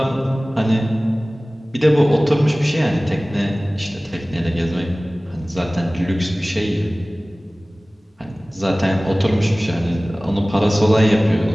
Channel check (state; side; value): normal; both; correlation 0.98